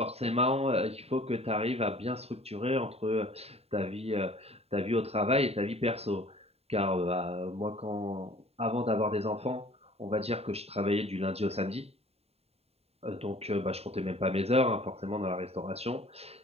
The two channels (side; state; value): left; late; 0.29 ms